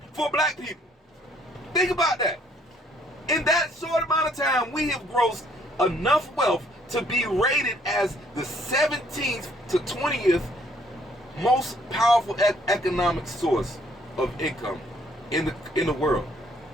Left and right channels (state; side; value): normal; both; correlation 0.64